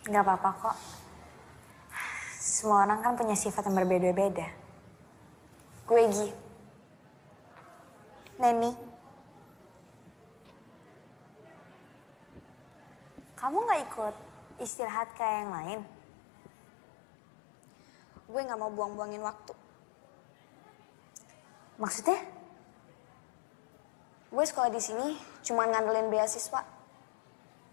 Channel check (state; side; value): drops out; right; at 14.7 s